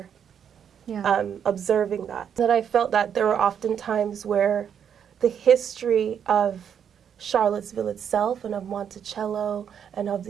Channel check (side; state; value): left; quieter; 8.2 dB